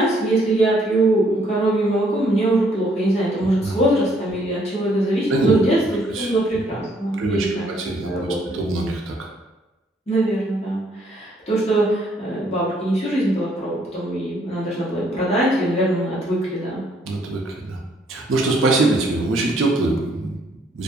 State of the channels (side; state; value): both; normal; correlation 0.67